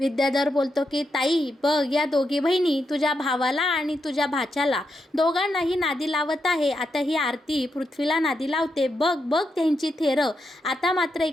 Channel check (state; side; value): normal; both; correlation 0.84